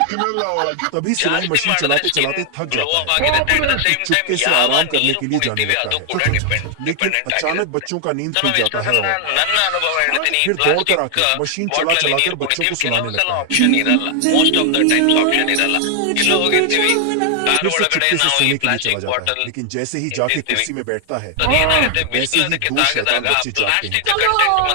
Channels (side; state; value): both; different; correlation 0.00